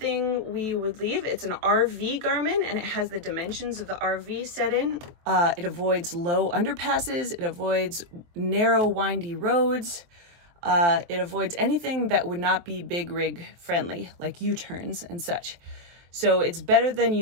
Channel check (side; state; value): left; late; 23 ms